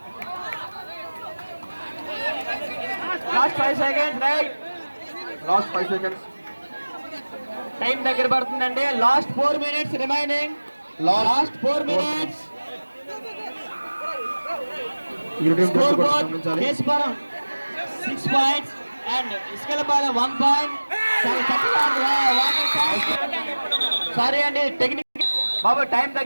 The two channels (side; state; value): both; inverted; correlation -1.00